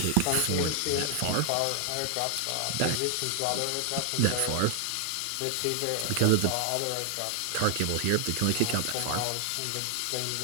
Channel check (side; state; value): both; different; correlation 0.00